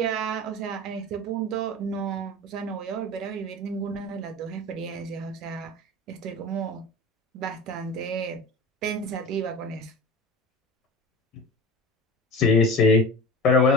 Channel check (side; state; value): both; normal; correlation 0.33